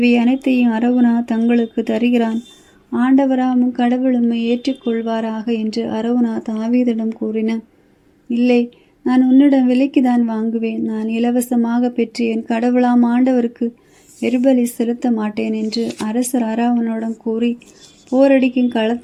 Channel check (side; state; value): both; identical; correlation 1.00